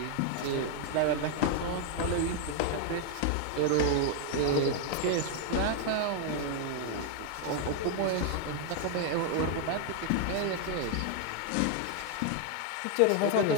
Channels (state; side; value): different; both; correlation 0.00